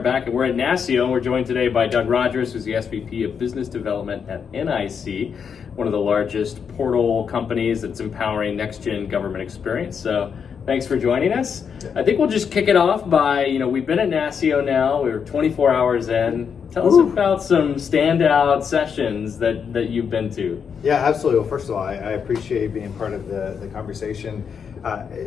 back, and we're at NASCIO, and we're joined today by Doug Rogers, who's the SVP of Business Development at NIC, one of the largest portal companies that's empowering next-gen government experience. So thanks for joining us. I think we'll just kick it off by, we've been at NASCIO now, we're 24 hours in. Tell us about some standout sessions that you've been to. Yeah, absolutely. Well, first of all, I appreciate being part of the conversation.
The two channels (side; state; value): right; quieter; 6.8 dB